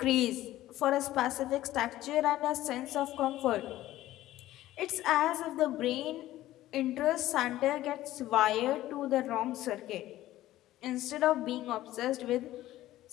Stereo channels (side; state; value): right; quieter; 14.9 dB